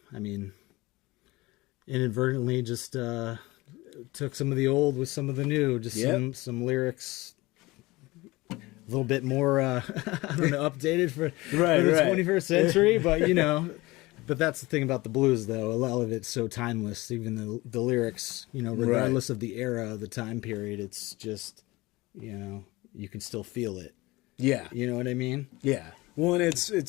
I mean, inadvertently just took some of the old with some of the new. Just Yep. some lyrics. A little bit more, I don't know, updated for Right, the right. 21st century, but you know, but that's the thing about the blues, though. A lot of it's so timeless. Even the lyrics, you know, regardless of the era, the time period, it's just, you know, you can still feel it. Yeah. You know what I mean? Yeah. Well, and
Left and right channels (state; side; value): quieter; right; 21.2 dB